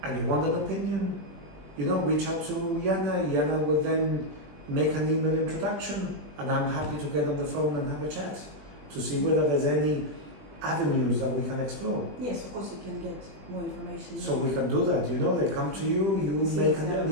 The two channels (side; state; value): left; late; 20 ms